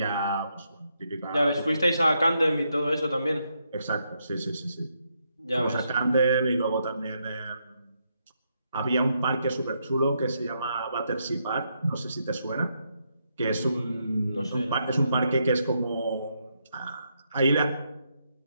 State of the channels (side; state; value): both; inverted; correlation -0.79